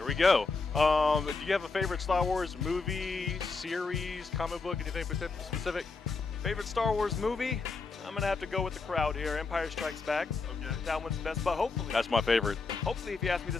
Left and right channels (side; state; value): right; quieter; 4.2 dB